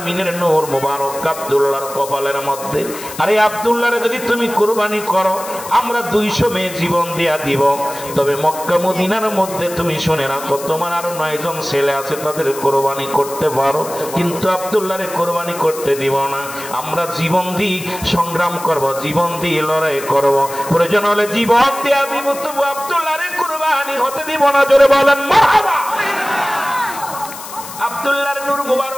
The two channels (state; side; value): noise; left; hiss, 13 dB below the sound